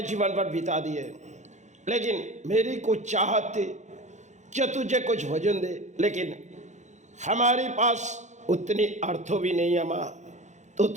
जीवन पर बिता दिए, लेकिन मेरी कुछ चाहत थी कि तुझे कुछ भोजन दे, लेकिन हमारे पास उतनी अर्थों भी नहीं है माँ। तू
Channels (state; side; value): late; left; 0.34 ms